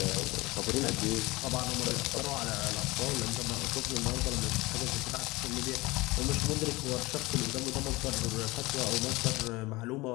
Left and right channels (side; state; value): right; quieter; 21.6 dB